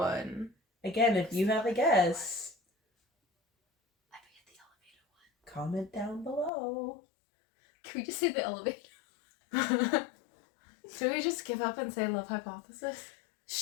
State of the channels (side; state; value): right; drops out; at 6.5 s